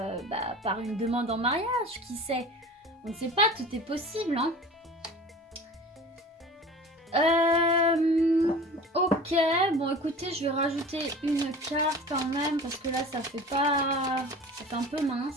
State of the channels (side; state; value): both; normal; correlation 0.39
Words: une demande en mariage, qui sait. On ne sait pas, tout est possible, hein. Ok, bon écoutez, je vais rajouter une carte quand même, parce que là ça fait un peu